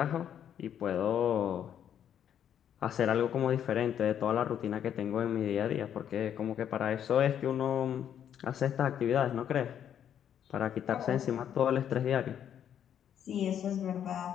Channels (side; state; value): right; quieter; 9.4 dB